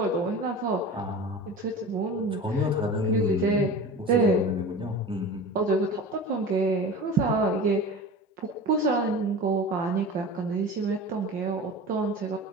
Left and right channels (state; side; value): normal; both; correlation 0.34